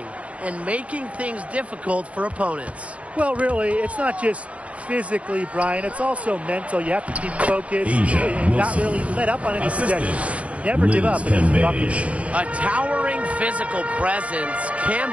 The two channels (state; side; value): late; left; 0.065 ms